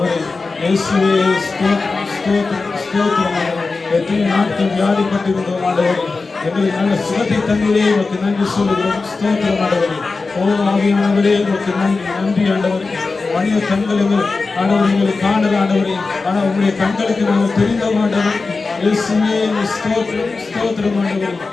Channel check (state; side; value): quieter; right; 4.0 dB